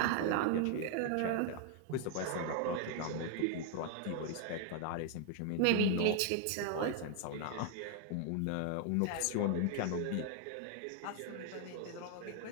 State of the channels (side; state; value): both; different; correlation 0.00